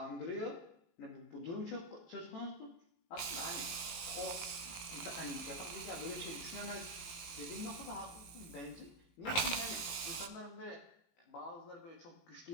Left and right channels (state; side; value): late; right; 18 ms